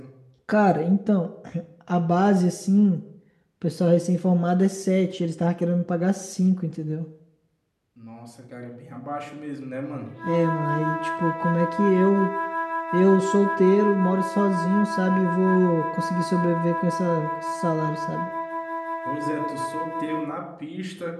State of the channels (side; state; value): both; identical; correlation 1.00